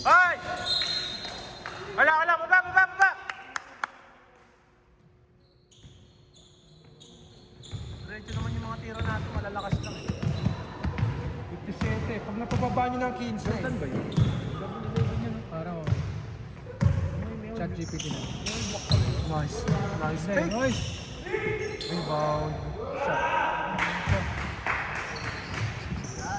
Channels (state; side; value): identical; both; correlation 1.00